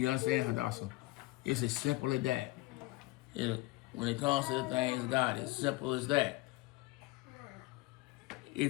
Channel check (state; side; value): quieter; right; 21.3 dB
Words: understand, Hadassah? It's as simple as that. When it comes to the things of God, it's simple as that.